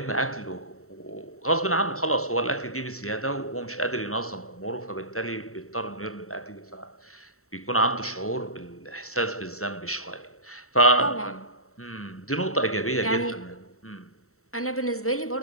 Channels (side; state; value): right; late; 0.63 ms